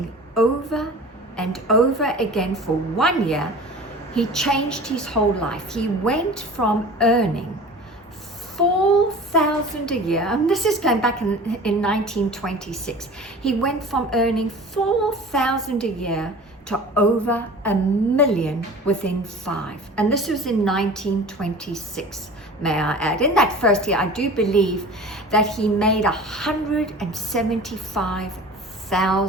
over and over again for 1 year, he changed his whole life. He went from earning $4,000 a year, and this is going back in 1926. He went from earning $4,000 a year to over $1 million within 5. And this was in 1926, may I add. In that first year, I do believe that he made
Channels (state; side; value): normal; both; correlation 0.40